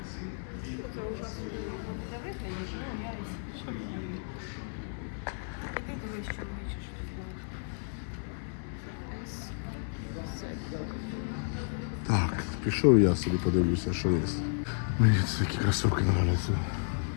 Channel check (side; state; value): right; silent; digital silence